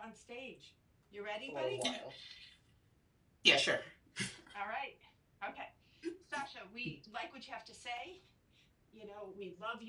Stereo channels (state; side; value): identical; both; correlation 1.00